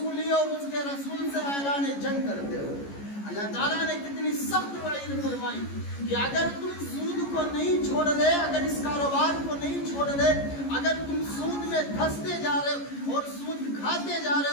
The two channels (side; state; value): right; late; 14 ms